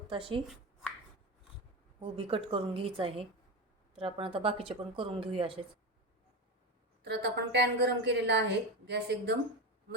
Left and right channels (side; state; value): both; normal; correlation 0.20